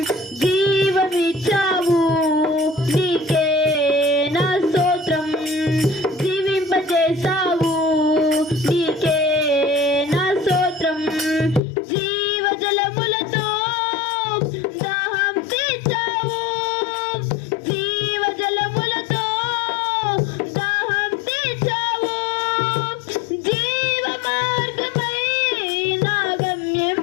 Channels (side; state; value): right; drops out; at 11.6 s